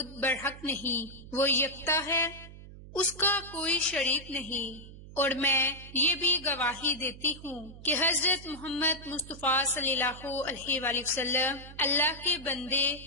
برحق نہیں، وہ یکتا ہے، اس کا کوئی شریک نہیں۔ اور میں یہ بھی گواہی دیتی ہوں کہ حضرت محمد مصطفیٰ صلی اللہ علیہ وآلہ وسلم اللہ کے بندے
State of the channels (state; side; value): noise; right; hum, 16 dB below the sound